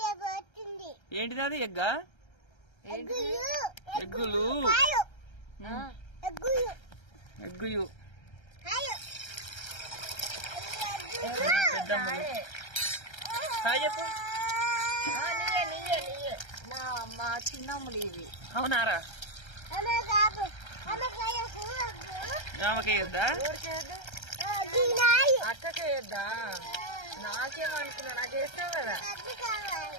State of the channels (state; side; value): late; right; 1.3 ms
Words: ఏంటిది? అది ఎగ్గా? ఎగ్గులు ఎగ్గుయు హాయ్ చెప్పు. మా చిన్నమ్ములు ఇవి. అవునారా? ఆమెకేయొద్దా? అక్కకేయొద్దా? నాకేమనుకున్నా, నాకు వేస్తావు కదా,